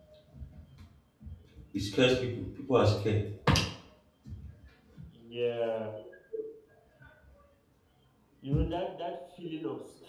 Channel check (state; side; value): identical; both; correlation 1.00